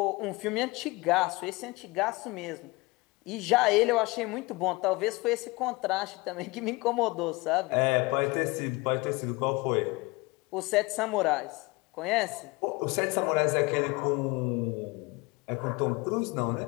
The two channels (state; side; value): quieter; right; 23.8 dB